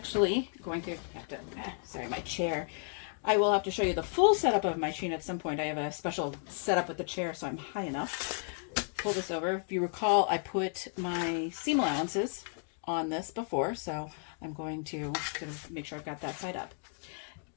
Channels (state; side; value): silent; right; 56 dB below the other